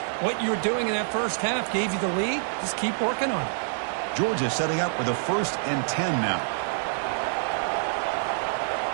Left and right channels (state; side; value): silent; left; 61 dB below the other